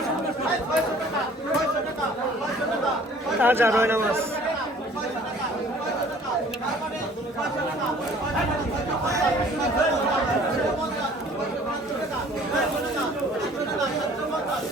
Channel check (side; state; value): both; normal; correlation 0.52